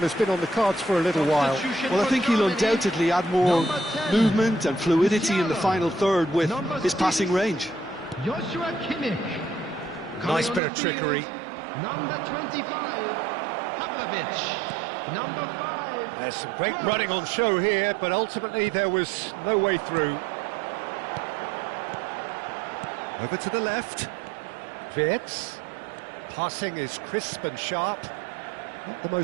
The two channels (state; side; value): drops out; left; at 10.6 s